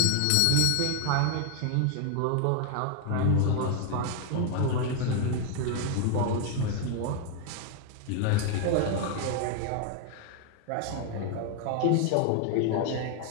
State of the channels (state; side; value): different; both; correlation 0.00